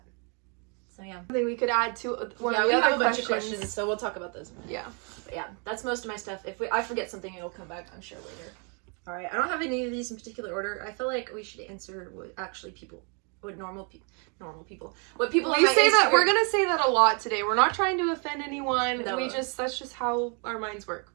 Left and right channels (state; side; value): quieter; left; 36.4 dB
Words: So yeah. Something we could add to one Yeah, of we the have other a bunch of questions. questions, so we'll talk about those. Yeah. But yeah, that's most of my stuff. If I forget something, it'll come back, I'm sure, later. Alright, I don't have any of these in particular order. I feel like we should answer what actually normal people. What people on We my say that Instagram- we're gonna say that a lot today. We're not trying to offend anyone. No. That's just how our minds work.